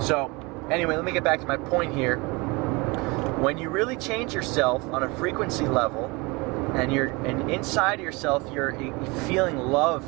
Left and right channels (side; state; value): left; quieter; 25.9 dB